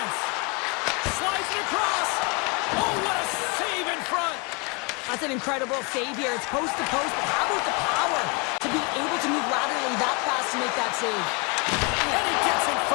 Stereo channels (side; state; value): right; quieter; 30.7 dB